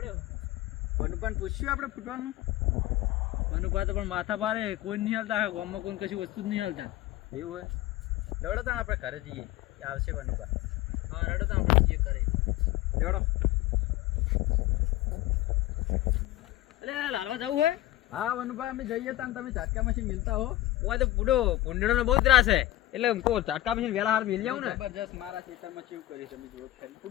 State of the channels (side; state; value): right; quieter; 15.6 dB